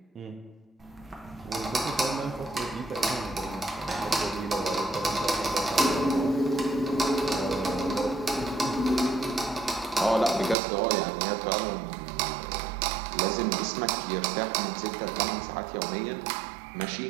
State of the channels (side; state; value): left; drops out; at 10.6 s